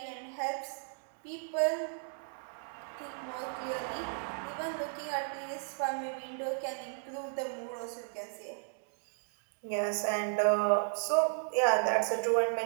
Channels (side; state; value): left; silent; digital silence